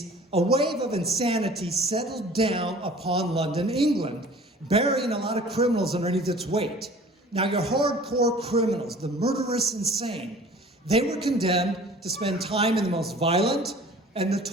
a wave of insanity settled down upon London, England, burying a lot of criminals underneath its weight. Now, your hardcore criminals, the murderous insane, they were condemned to spend time in the most violent and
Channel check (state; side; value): normal; both; correlation 0.46